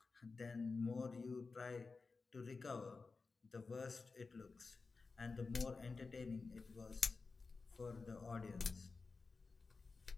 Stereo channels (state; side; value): quieter; right; 4.2 dB